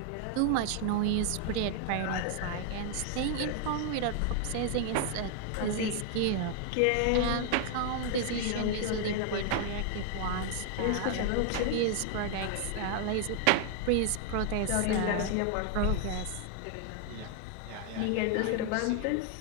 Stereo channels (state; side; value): different; both; correlation 0.00